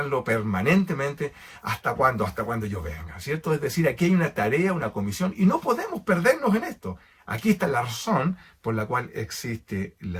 permanentemente. ¿Hasta cuándo? Hasta cuando yo venga, ¿cierto? Es decir, aquí hay una tarea, una comisión, y no podemos perdernos en esto. Aquí está la razón por la cual existe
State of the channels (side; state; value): both; identical; correlation 1.00